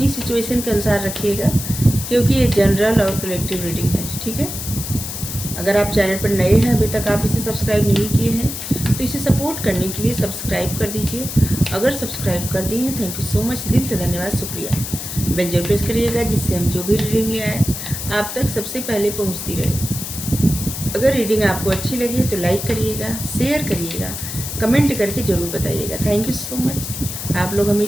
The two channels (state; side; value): noise; left; hiss, 7 dB below the sound